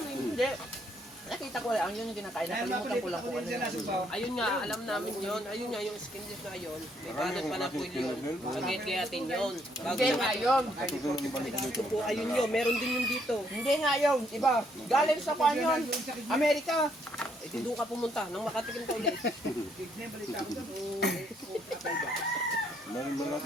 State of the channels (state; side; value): normal; both; correlation 0.70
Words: amin? Hindi. Nakita ko lang, yun yung kinakain. Nakalimutan ko lang kung ano yun. Ayun nga, alam namin yon. Ayun nga, yung skinless na yun. May kanan pa na po yun. Pagkikayatin yun. Bago Hindi nga yun. ito po, ayun yun. Meron din yung dito. Hindi nga yun. Iba. Galing sa kwan yun. Amerika. Ito doon ka pumunta, nang makatikim ka ulit.